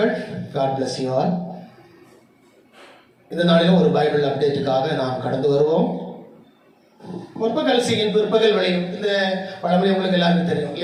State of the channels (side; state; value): both; identical; correlation 1.00